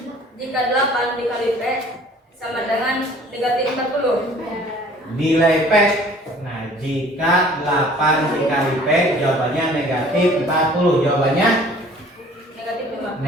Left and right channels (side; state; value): both; normal; correlation 0.52